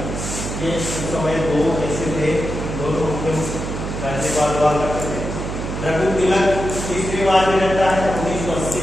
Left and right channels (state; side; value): noise; right; hum, 5 dB below the sound